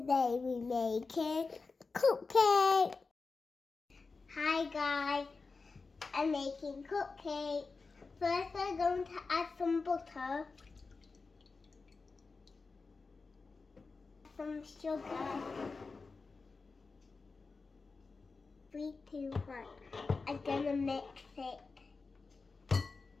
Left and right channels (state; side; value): quieter; right; 4.2 dB